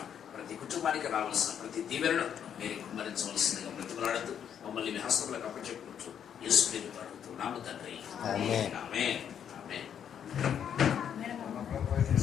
ప్రతి కుటుంబానికి రావాల్సిన ప్రతి దీవెనను మీరు కుమ్మరించవలసిందిగా బ్రతిమలాడుతూ మమ్మల్ని మీ హస్తములకు అప్పచెప్పుకుంటూ యేసు పేరుతో అడుగుతున్నాము తండ్రి. ఆమేన్. ఆమేన్. ఆమేన్.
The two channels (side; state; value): right; quieter; 8.7 dB